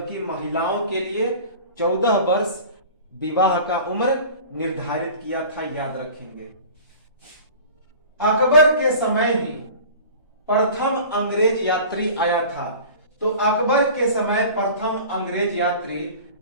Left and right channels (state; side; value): inverted; both; correlation -0.41